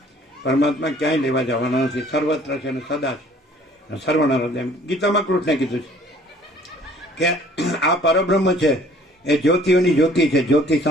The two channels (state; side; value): normal; both; correlation 0.55